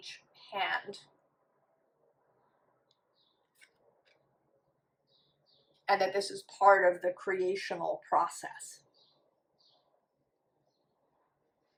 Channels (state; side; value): identical; both; correlation 1.00